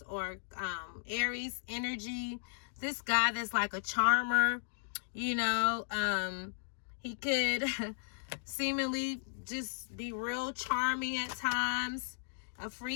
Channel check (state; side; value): silent; right; digital silence